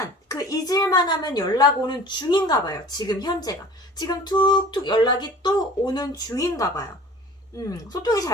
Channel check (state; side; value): normal; both; correlation 0.44